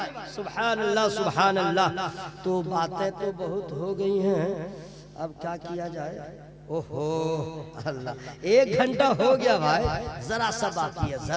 सुभान अल्लाह सुभान अल्लाह। तो बातें तो बहुत हो गई हैं, अब क्या किया जाए? ओहो अल्लाह, 1 घंटा हो गया भाई, जरा सा बाकी है,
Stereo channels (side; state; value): both; identical; correlation 1.00